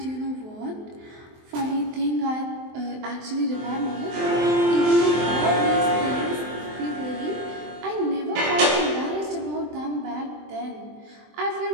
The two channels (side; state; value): left; late; 23 ms